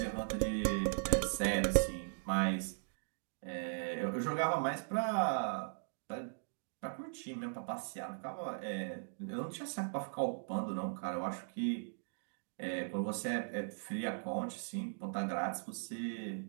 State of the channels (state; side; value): silent; left; digital silence